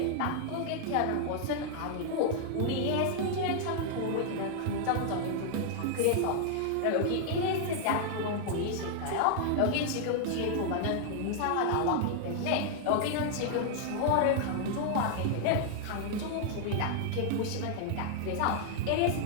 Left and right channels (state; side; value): different; both; correlation -0.01